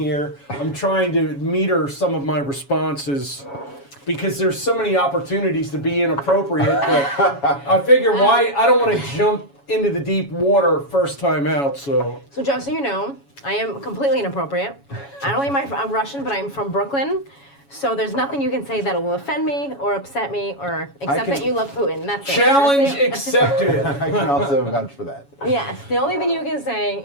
I'm trying to meter some of my responses because there's so many opportunities to be inappropriate. But I figure I don't want to jump into the deep water first time out. So just so you know, I am completely inappropriate. Not only am I Russian, but I'm from Brooklyn. So there's nothing you can say that will offend me or upset me, or except that you love Putin. That's it. Challenge accepted. I can also vouch for that. Yes, the only thing you can say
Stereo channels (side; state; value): right; late; 7.2 ms